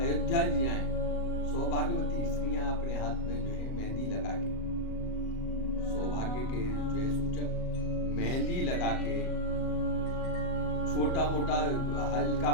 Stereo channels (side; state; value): right; late; 38 ms